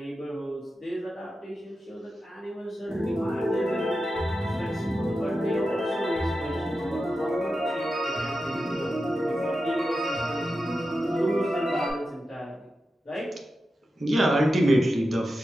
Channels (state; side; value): normal; both; correlation 0.91